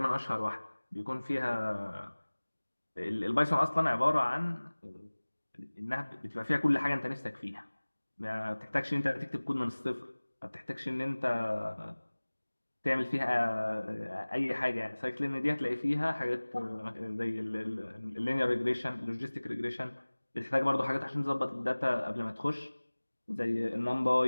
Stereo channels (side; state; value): both; inverted; correlation -1.00